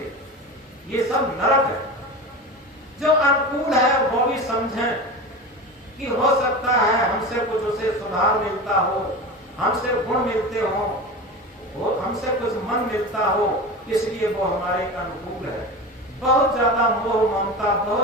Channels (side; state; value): both; normal; correlation 0.28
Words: ये सब नरक है। जो अनुकूल है वो भी समझें कि हो सकता है हमसे कुछ उसे सुधार मिलता हो, हमसे गुण मिलते हो, वो हमसे कुछ मन मिलता हो, इसलिए वो हमारे अनुकूल है। बहुत ज्यादा मोह ममता,